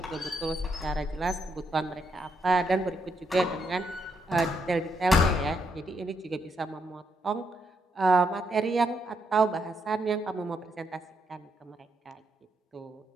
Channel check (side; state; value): both; normal; correlation 0.77